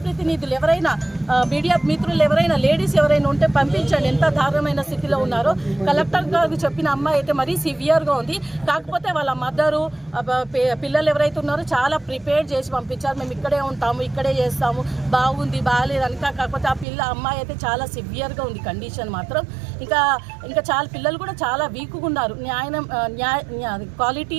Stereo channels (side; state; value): left; drops out; at 16.9 s